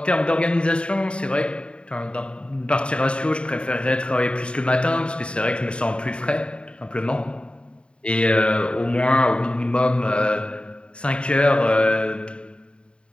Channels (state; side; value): late; right; 0.054 ms